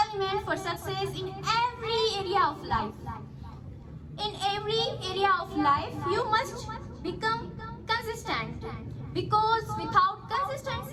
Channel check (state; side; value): identical; both; correlation 1.00